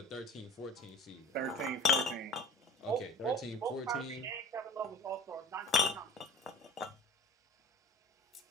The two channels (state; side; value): normal; both; correlation 0.39